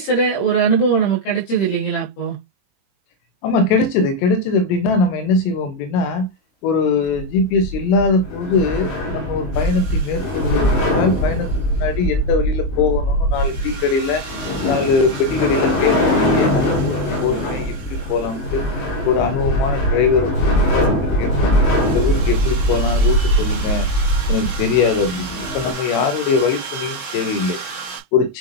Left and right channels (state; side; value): late; right; 21 ms